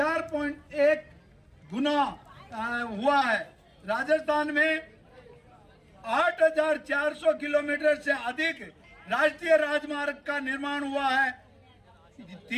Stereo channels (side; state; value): both; identical; correlation 1.00